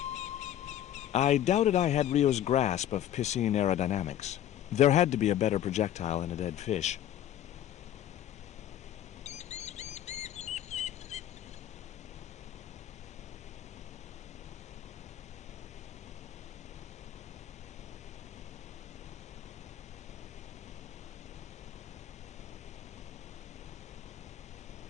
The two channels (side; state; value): right; quieter; 11.6 dB